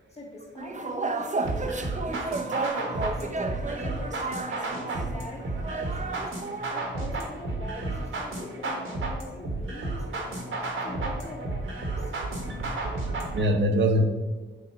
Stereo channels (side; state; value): both; normal; correlation 0.38